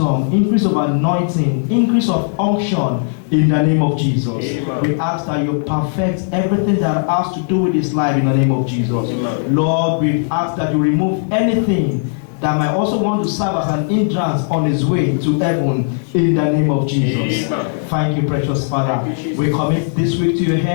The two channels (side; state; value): right; silent; 68 dB below the other